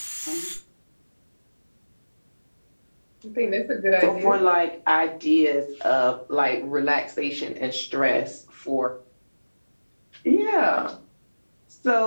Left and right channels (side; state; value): both; inverted; correlation -1.00